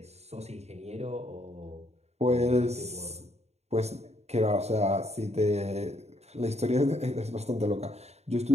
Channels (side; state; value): left; late; 0.31 ms